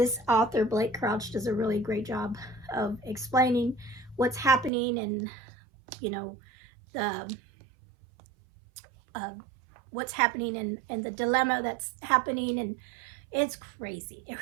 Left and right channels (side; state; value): left; drops out; at 4.7 s